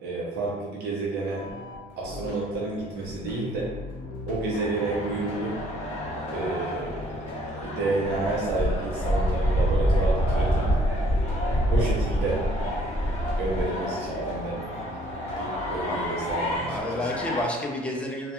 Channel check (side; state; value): both; normal; correlation 0.60